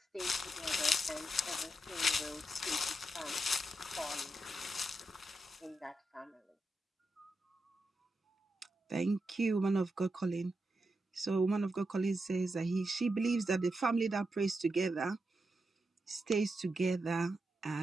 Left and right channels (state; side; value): normal; both; correlation 0.86